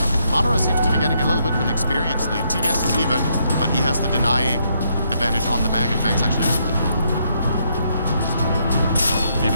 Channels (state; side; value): inverted; both; correlation -0.75